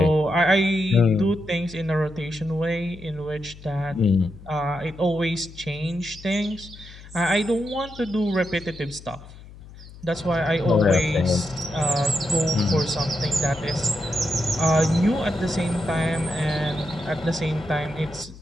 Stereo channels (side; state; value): left; noise; hum, 18 dB below the sound